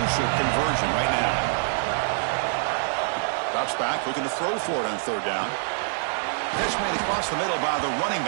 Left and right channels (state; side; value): silent; left; 61 dB below the other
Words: conversion right now. Drops back, looking to throw for it on third down. Catch made across the middle by the running